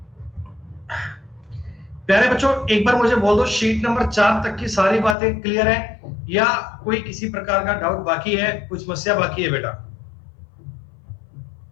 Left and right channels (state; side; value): drops out; right; at 5.2 s